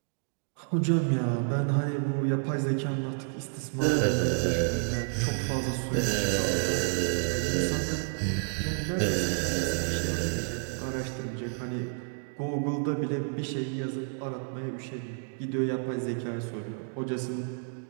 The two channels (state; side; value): silent; left; 58 dB below the other